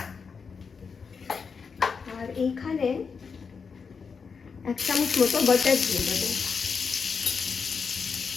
আর এইখানে 1 চামচ মতো বাটার দিয়ে দেব।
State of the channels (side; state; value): right; quieter; 5.6 dB